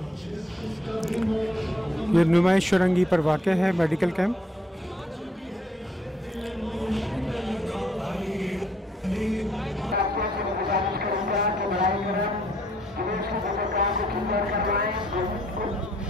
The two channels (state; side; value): normal; both; correlation 0.68